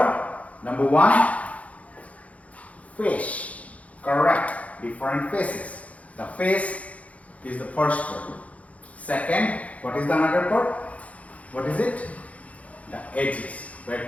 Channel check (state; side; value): late; right; 0.067 ms